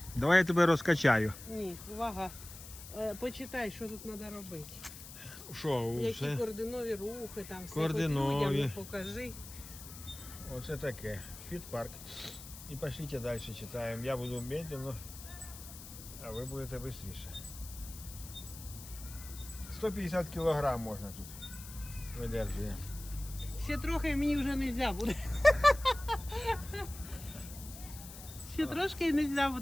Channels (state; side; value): noise; left; hiss, 14 dB below the sound